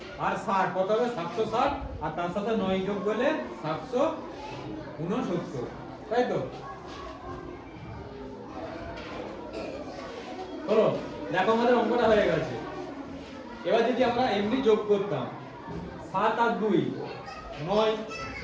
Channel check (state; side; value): identical; both; correlation 1.00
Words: আর 60 কত হবে 760, আর তার সাথে 9 যোগ করলে 769, তাই তো। হলো, দেখো আমাদের অঙ্কটা হয়ে গেছে। এবার যদি আমরা এমনি যোগ করতাম 7 আর 2 9,